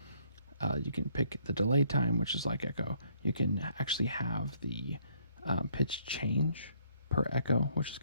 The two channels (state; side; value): inverted; both; correlation -0.66